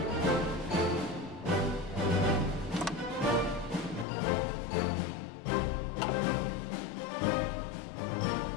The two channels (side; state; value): right; drops out; at 4.0 s